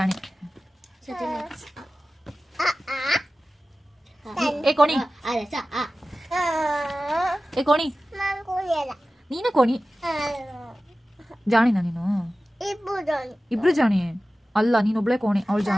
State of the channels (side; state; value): both; normal; correlation 0.95